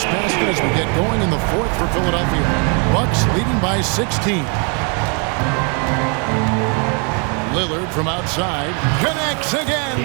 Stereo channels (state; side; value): quieter; left; 36.8 dB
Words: basket as we get going in the 4th for Philadelphia. Bucks leading by 16. Lillard from outside connects